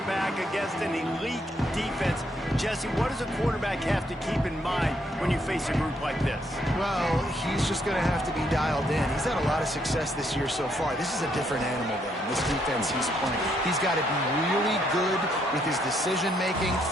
against an elite defense. Jesse, what does a quarterback have to keep in mind when you face a group like this? Well, he's just going to have to be dialed in. He's had a lot of success this year so far. This is a different animal, though, this defense he's playing. He's got to be really good with his decision-making,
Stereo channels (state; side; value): normal; both; correlation 0.73